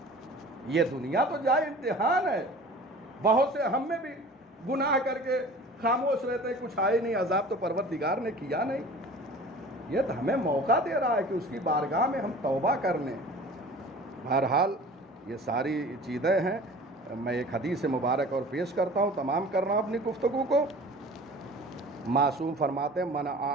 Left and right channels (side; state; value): both; normal; correlation 0.43